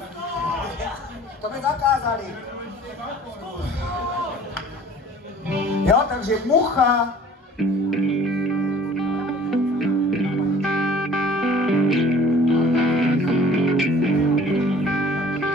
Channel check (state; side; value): normal; both; correlation 0.49